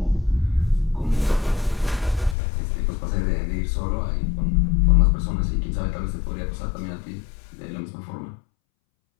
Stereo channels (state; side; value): drops out; right; at 2.4 s